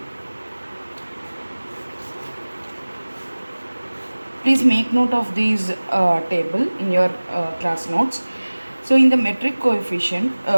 Please make note of these table in your class notes. So in the metric coefficient,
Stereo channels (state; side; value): inverted; both; correlation -1.00